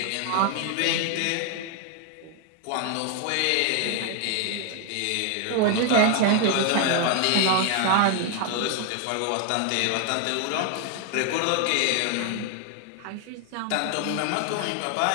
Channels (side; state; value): both; different; correlation 0.01